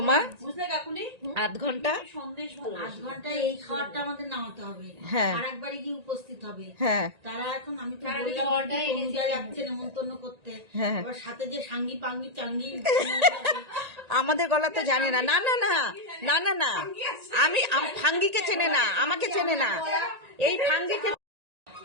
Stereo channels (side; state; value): left; late; 1.9 ms